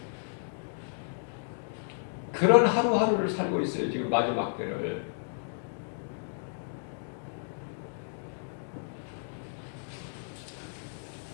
그런 하루하루를 살고 있어요. 지금 마지막 때를.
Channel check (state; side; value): silent; right; digital silence